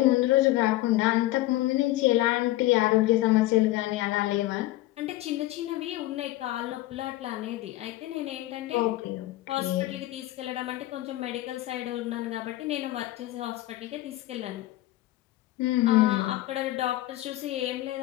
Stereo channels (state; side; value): quieter; right; 17.2 dB